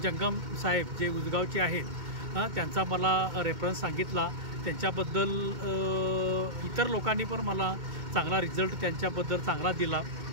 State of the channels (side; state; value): left; late; 2.2 ms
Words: जंगम साहेब जे उजगावचे आहेत त्यांचा मला रेफरन्स सांगितला। त्यांच्याबद्दल इतर लोकांनी पण मला चांगला रिझल्ट त्यांच्याबद्दल चांगला दिला।